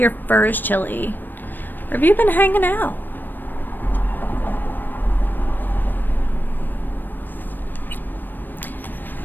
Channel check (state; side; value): late; right; 0.092 ms